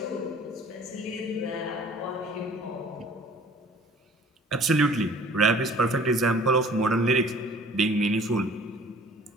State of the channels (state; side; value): normal; both; correlation 0.51